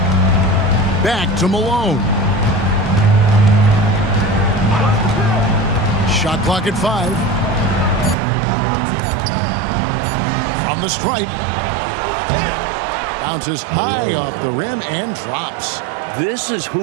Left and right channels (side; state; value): left; drops out; at 8.2 s